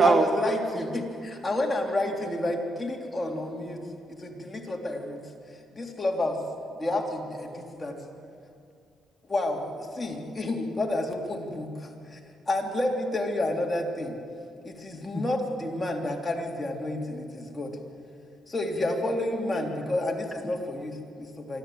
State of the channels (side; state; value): both; normal; correlation 0.81